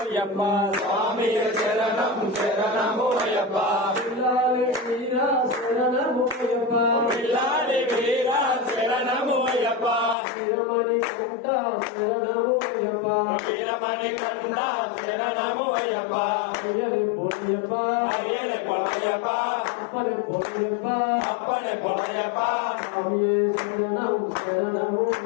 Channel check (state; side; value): drops out; right; at 10.2 s